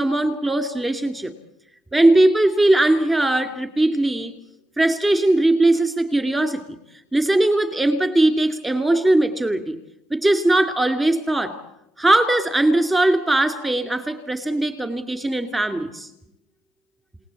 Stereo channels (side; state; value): both; normal; correlation 0.94